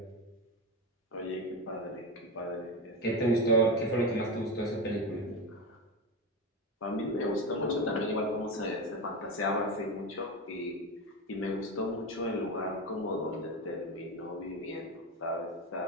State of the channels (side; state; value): both; normal; correlation 0.19